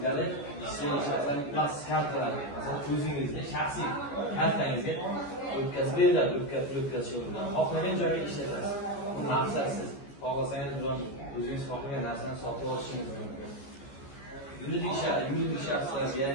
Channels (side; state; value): right; late; 14 ms